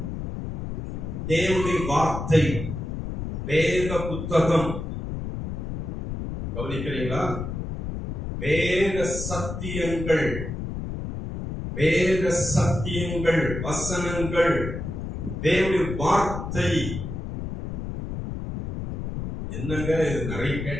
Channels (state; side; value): noise; left; rumble, 6 dB below the sound